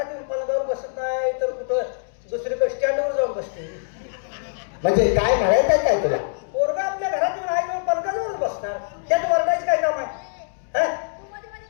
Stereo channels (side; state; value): right; silent; digital silence